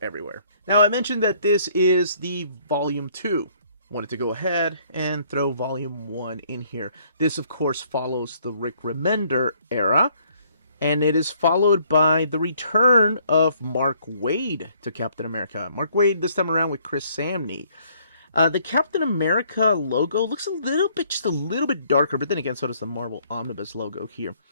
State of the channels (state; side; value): inverted; both; correlation -0.64